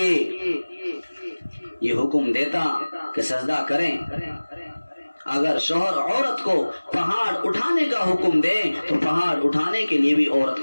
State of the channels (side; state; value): both; inverted; correlation -1.00